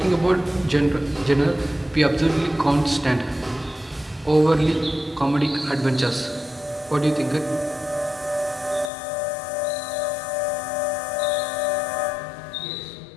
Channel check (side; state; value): right; drops out; at 8.9 s